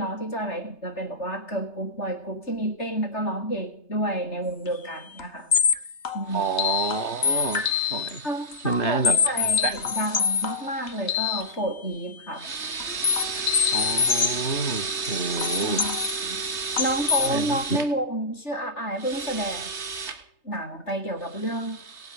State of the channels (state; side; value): late; right; 3.3 ms